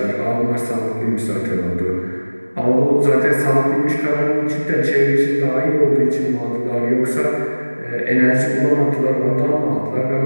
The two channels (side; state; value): both; inverted; correlation -1.00